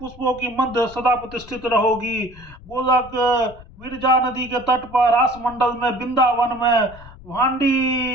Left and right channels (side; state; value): left; noise; rumble, 20 dB below the sound